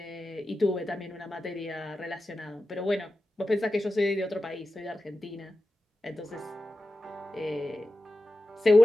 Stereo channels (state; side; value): normal; both; correlation 0.92